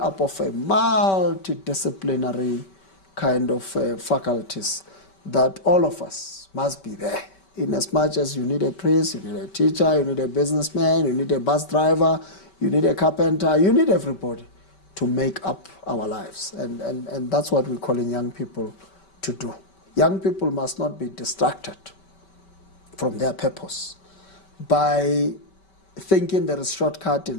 of a multidisciplinary kind of faculties that all of us must be there. In as much as you need a priest, you need a teacher, you need a businessman, you need a bus driver, you need a carpenter, you need everybody to make up our lives. And that's what we're calling young people to do. Young people must not be distracted from their purpose by thinking there is shortcut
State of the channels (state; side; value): late; right; 5.2 ms